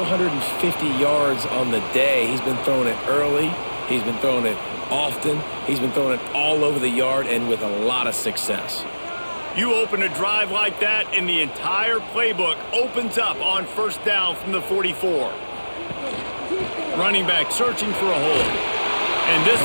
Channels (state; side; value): inverted; both; correlation -1.00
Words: yards on the day. He's been throwing it early. He's been throwing it often. He's been throwing it all over the yard and with a lot of success. You open a drive like that, and the entire playbook opens up on 1st down from the 44. Running back searching for a hole. And this